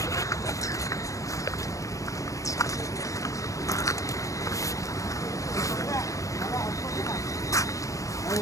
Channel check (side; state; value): right; late; 0.16 ms